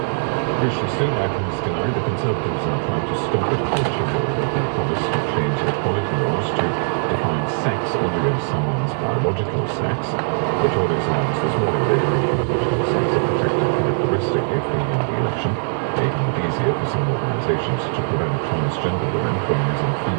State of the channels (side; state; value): left; silent; digital silence